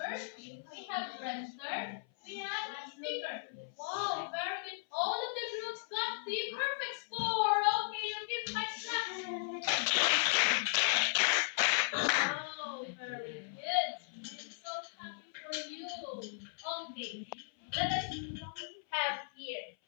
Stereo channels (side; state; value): right; silent; 54 dB below the other